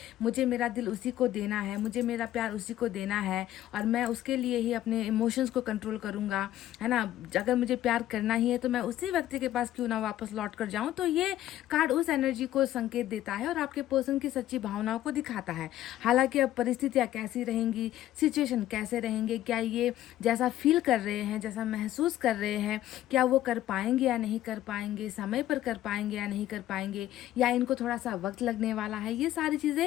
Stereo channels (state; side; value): quieter; right; 13.3 dB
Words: मुझे मेरा दिल उसी को देना है, मुझे मेरा प्यार उसी को देना है, और मैं उसके लिए ही अपने इमोशंस को कंट्रोल करूँगा, है ना। अगर मुझे प्यार करना ही है तो मैं उसी व्यक्ति के पास क्यों ना वापस लौट कर जाऊँ। तो ये कार्ड उस एनर्जी को संकेत देता है और आपके पर्सन की सच्ची भावनाओं को दिखाता है। हालांकि अब परिस्थितियाँ कैसी रहेंगी, सिचुएशन कैसे रहेंगे, क्या ये जैसा फील कर रहे हैं, जैसा महसूस कर रहे हैं, क्या वो कर पाएंगे या नहीं कर पाएंगे, समय पर कर पाएंगे या नहीं कर पाएंगे, या इनको थोड़ा सा वक्त लगने वाला है, ये सारी